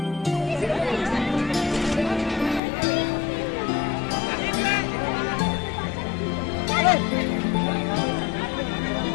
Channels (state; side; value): drops out; right; at 2.6 s